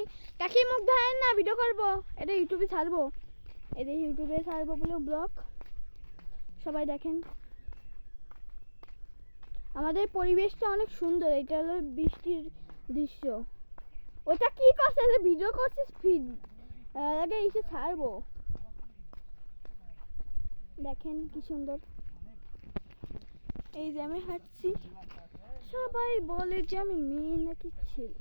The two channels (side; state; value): both; inverted; correlation -1.00